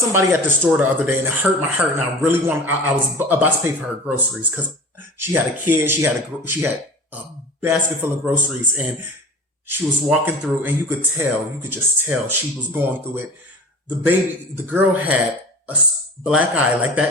at the store the other day and it hurt my heart, and I really I was about to pay for her groceries because she had a kid. She had a basket full of groceries, and she was walking through, and you could just tell she was going through it. The girl had a black eye, like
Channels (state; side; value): normal; both; correlation 0.37